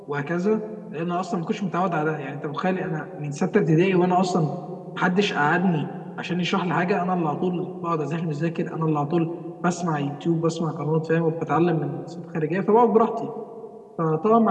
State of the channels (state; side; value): identical; both; correlation 1.00